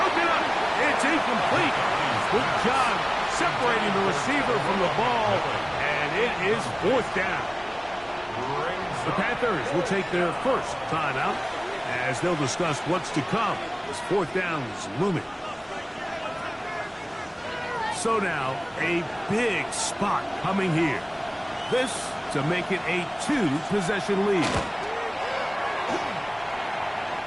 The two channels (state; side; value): identical; both; correlation 1.00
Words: up. It's incomplete. Good job separating the receiver from the ball, and it is fourth down. The Panthers will take their first timeout as they'll discuss what's to come as fourth down is looming. So now, a big spot coming here. This to make it a 2-possession lead.